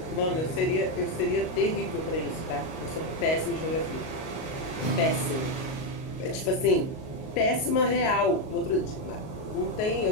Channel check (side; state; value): right; late; 38 ms